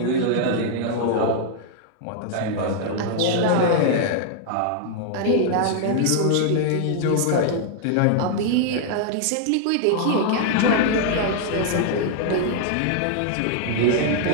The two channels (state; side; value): different; both; correlation -0.01